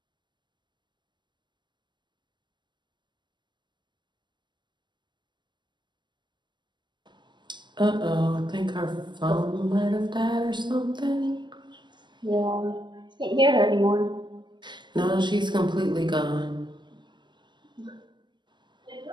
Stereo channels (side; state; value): left; late; 0.22 ms